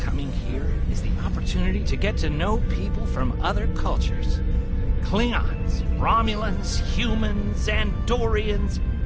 here is the opportunity to get to know people from other cultures. Klingons, Romulans, humans, Andorians,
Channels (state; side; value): identical; both; correlation 1.00